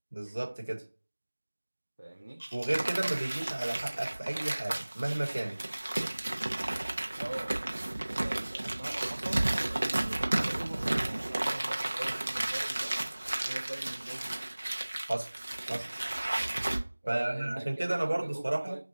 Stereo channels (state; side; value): inverted; both; correlation -1.00